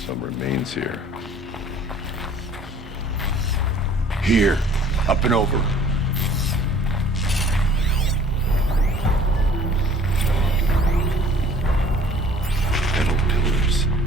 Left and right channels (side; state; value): both; normal; correlation 0.52